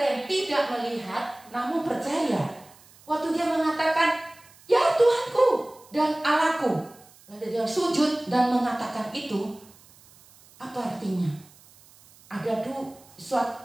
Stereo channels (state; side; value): noise; right; hiss, 26 dB below the sound